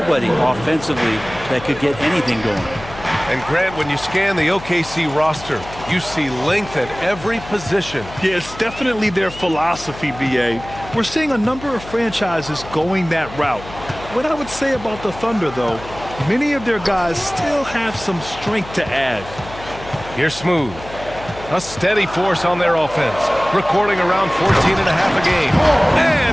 offensively that could get anything going. And Grant, when you scan the OKC roster, you see length at every position. Yeah, it's definitely their philosophy, BA. We're seeing a number of franchises going that route. What I would say about the Thunder, though, many of their guys still have some strength to add. Here's Smooth. A steady force on their offense, recording around 14.5 a game.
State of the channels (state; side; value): noise; left; hum, 15 dB below the sound